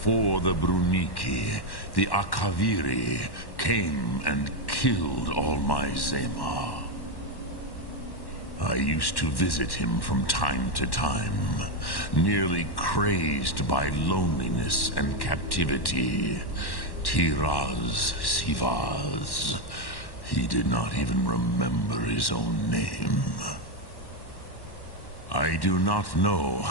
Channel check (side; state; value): right; late; 1.1 ms